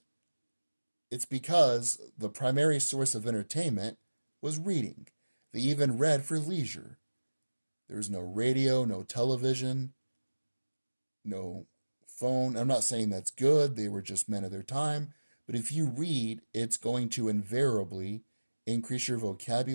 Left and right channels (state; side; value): inverted; both; correlation -1.00